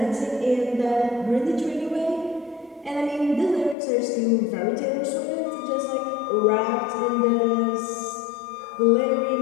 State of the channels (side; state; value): right; drops out; at 3.8 s